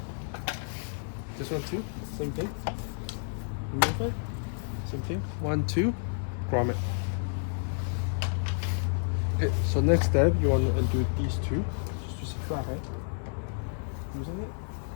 This one too, same thing. Remove it, same thing. 1, 2, grommet. Okay, so next step, you want to undo these two. Just use a flathead. Using it.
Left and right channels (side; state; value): right; silent; digital silence